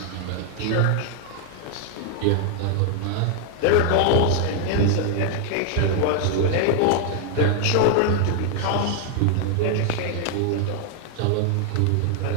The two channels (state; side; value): different; both; correlation 0.00